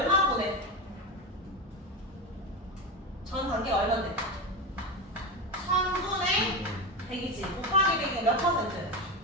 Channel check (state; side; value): normal; both; correlation 0.18